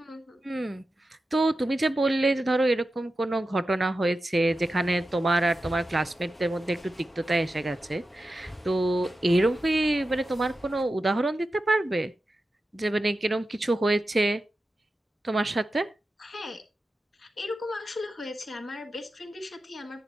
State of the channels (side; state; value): both; normal; correlation 0.92